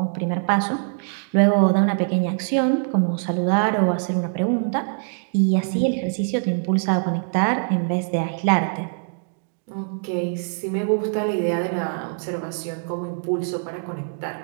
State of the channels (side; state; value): left; silent; digital silence